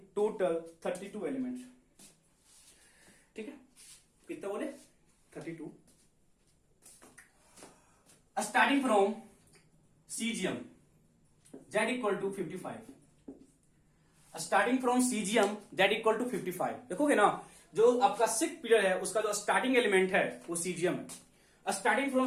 32 elements, ठीक है। कितना बोले, 32। Starting from caesium Z equal to 55, starting from caesium Z equal to 55। देखोगे ना, जो आपका सिक्स्थ पीरियड है उसका जो स्टार्टिंग एलिमेंट है वो सीजियम है, starting from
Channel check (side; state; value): both; identical; correlation 1.00